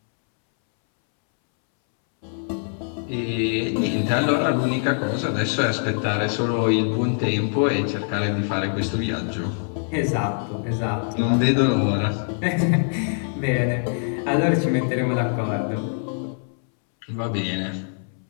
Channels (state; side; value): silent; right; 63 dB below the other